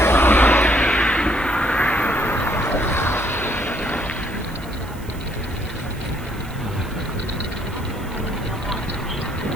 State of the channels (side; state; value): right; noise; hiss, 21 dB below the sound